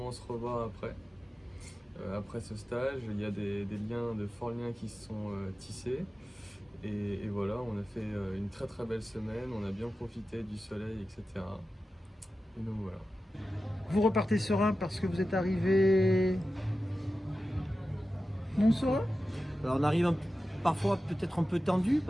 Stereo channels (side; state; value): both; normal; correlation 0.93